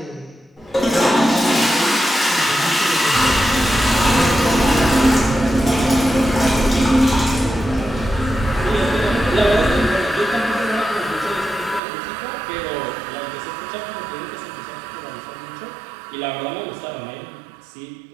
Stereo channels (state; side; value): drops out; left; at 11.8 s